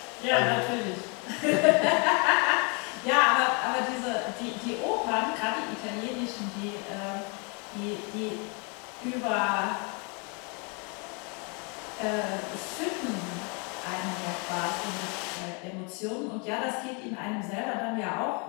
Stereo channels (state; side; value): quieter; right; 34.0 dB